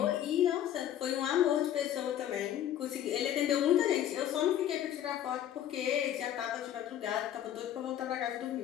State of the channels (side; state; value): right; quieter; 11.1 dB